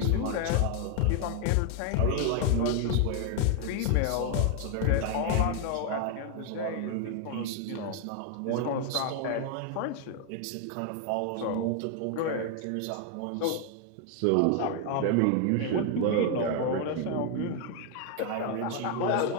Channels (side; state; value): both; different; correlation 0.01